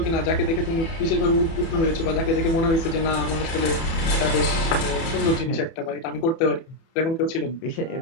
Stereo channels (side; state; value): right; late; 30 ms